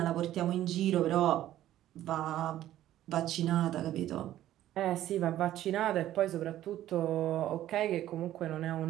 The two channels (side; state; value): left; quieter; 13.1 dB